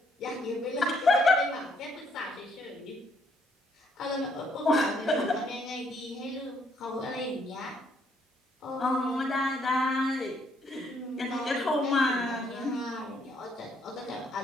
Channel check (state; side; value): normal; both; correlation 0.69